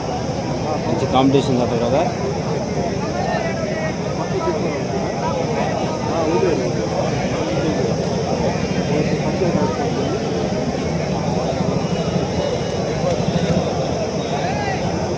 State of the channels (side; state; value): both; identical; correlation 1.00